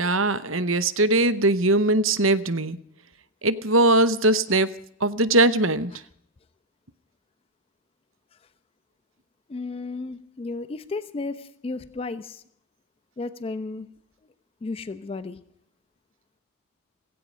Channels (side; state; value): both; normal; correlation -0.02